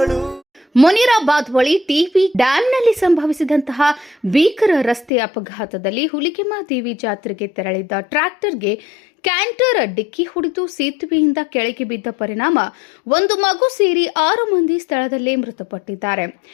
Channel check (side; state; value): right; drops out; at 5.1 s